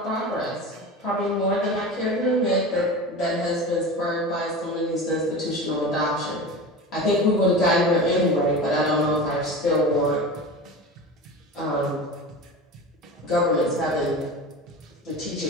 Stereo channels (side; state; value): both; normal; correlation 0.31